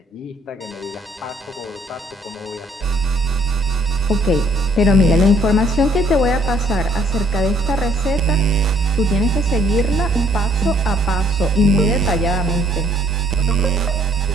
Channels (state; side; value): normal; both; correlation 0.63